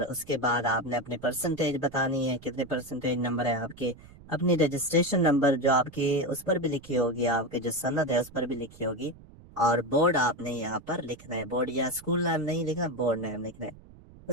उसके बाद आपने अपने परसेंटेज बतानी है, कितने परसेंटेज नंबर है आपके। अपनी रजिस्ट्रेशन नंबर जो आपकी उस पर भी लिखी होगी, आपके जो सनद है उस पर भी लिखी होगी। और बोर्ड आपने यहाँ पर लिखना है, बोर्ड या स्कूल नाम नहीं लिखना, बोर्ड नाम लिखना है।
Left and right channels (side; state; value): right; noise; rumble, 21 dB below the sound